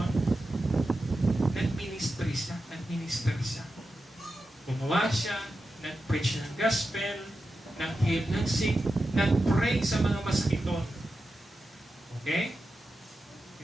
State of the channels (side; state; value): both; normal; correlation 0.91